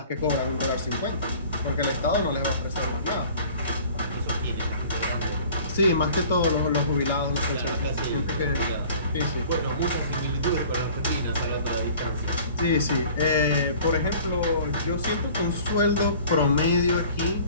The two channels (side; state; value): both; inverted; correlation -0.48